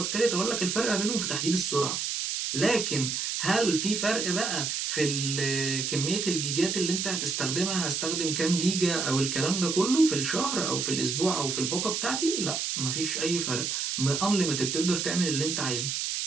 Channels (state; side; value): noise; right; hiss, 1 dB below the sound